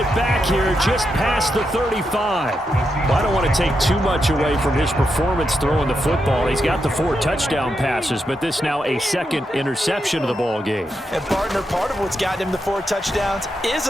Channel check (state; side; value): normal; both; correlation 0.84